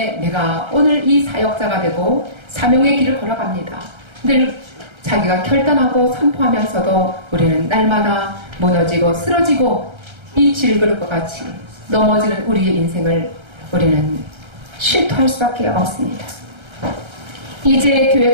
내가 오늘 이 사역자가 되고 사명의 길을 걸어갑니다. 늘 자기가 결단하고 선포하면서도 우리는 날마다 무너지고 쓰러지고 이 질그릇과 같이 넘어지는 우리의 인생을 우리는 실토할 수밖에 없습니다. 이제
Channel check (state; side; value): late; left; 1.3 ms